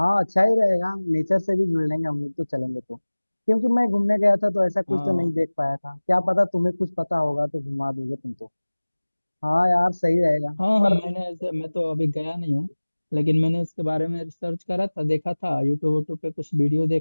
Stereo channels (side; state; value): both; inverted; correlation -1.00